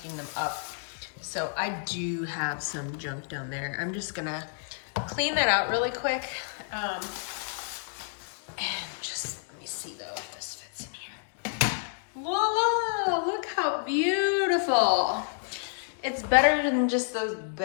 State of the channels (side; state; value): right; silent; digital silence